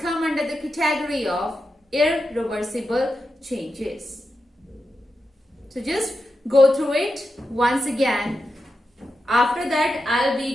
under the category of irreversible changes. So just go through it once again. After that, I'll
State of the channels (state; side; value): normal; both; correlation 0.89